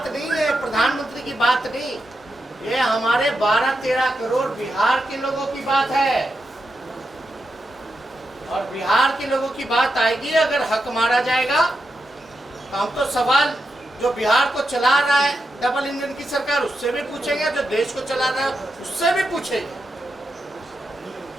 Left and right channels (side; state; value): both; normal; correlation 0.87